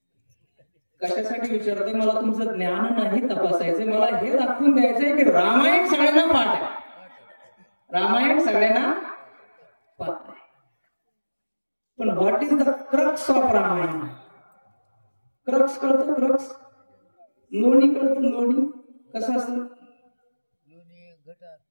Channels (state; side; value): inverted; both; correlation -1.00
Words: कशासाठी विचारते? मला तुमचं ज्ञान नाही तपासायचं. मला हे दाखवून द्यायचंय की रामायण सगळ्यांना पाठ आहे. रामायण सगळ्यांना पाठ आहे. पण what is the crux of Ramayana? Crux कळतं? क्रक्स. लोणी कळतं? लोणी कसं असतं?